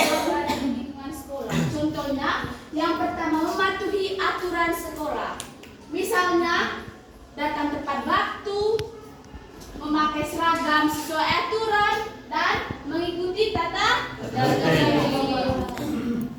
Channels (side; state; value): both; identical; correlation 1.00